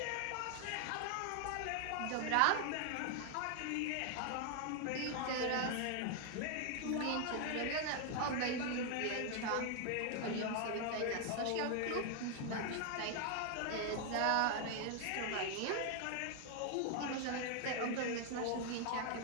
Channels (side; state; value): both; different; correlation 0.00